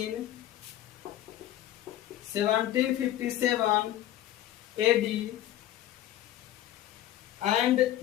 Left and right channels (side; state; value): right; quieter; 13.2 dB